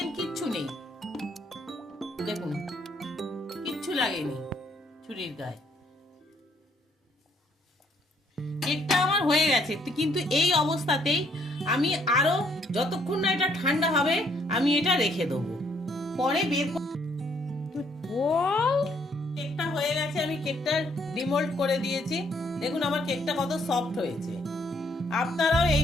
কিচ্ছু নেই, দেখুন কিচ্ছু লাগেনি ছুরির গায়ে। কেকটা আমার হয়ে গেছে, কিন্তু এই অবস্থাতেই আমি আরো যতক্ষণ না এটা ঠান্ডা হবে আমি এটা রেখে দেবো, পরে বের হয়ে গেছে, আমি কেকটা ডিমোল্ড করে দিয়েছি। দেখুন আমার কেকটা কত সফট হয়েছে। আপনারাও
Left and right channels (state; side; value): normal; both; correlation 0.68